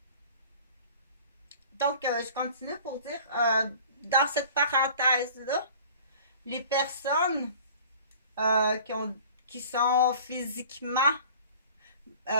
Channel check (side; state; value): both; inverted; correlation -0.45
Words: Donc, je continue pour dire, dans cette parenthèse-là, les personnes qui sont physiquement,